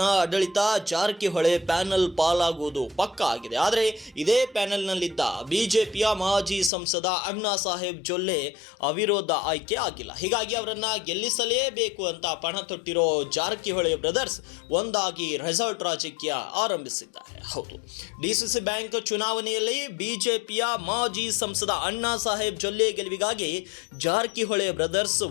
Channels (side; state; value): right; drops out; at 6.7 s